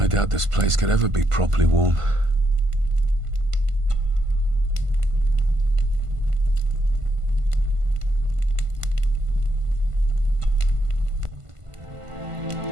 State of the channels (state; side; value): late; left; 1.5 ms